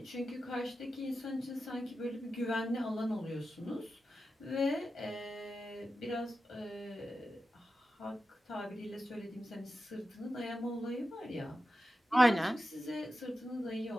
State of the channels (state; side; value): normal; both; correlation 0.91